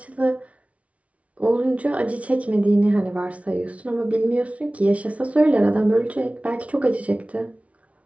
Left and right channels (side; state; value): left; late; 0.065 ms